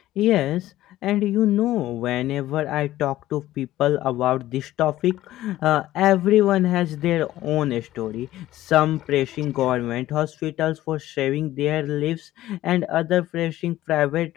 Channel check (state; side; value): quieter; right; 14.8 dB